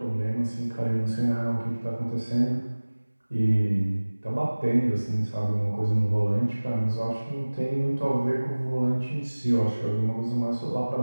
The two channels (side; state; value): both; inverted; correlation -1.00